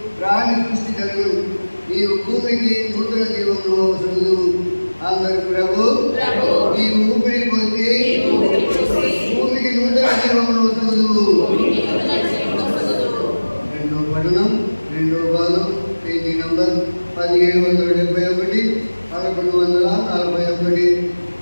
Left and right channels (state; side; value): inverted; both; correlation -1.00